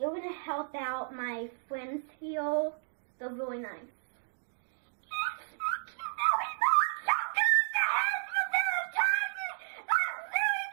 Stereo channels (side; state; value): left; silent; digital silence